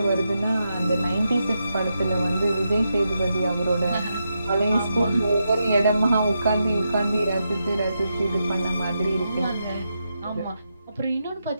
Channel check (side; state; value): both; inverted; correlation -0.85